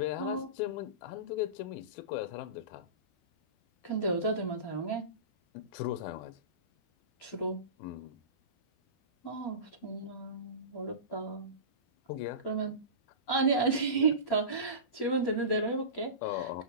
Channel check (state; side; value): late; right; 12 ms